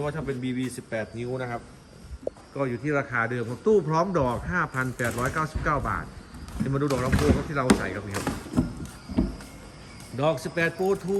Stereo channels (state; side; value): identical; both; correlation 1.00